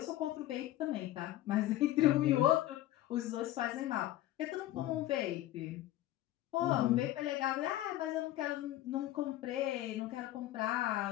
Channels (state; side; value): quieter; right; 14.6 dB